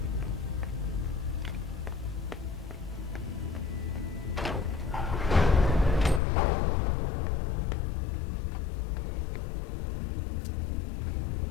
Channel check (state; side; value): drops out; right; at 6.2 s